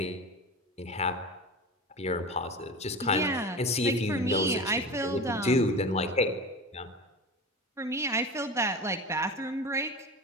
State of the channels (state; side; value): normal; both; correlation 0.30